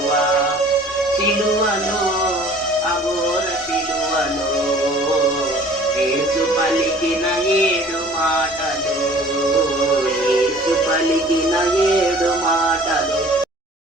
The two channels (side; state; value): both; normal; correlation 0.49